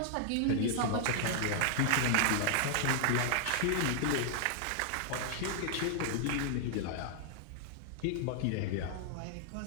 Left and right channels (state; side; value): different; both; correlation 0.00